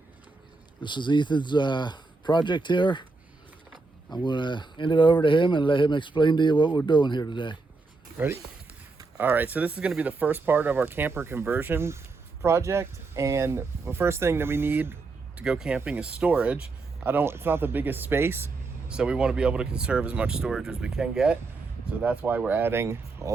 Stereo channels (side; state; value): left; quieter; 3.8 dB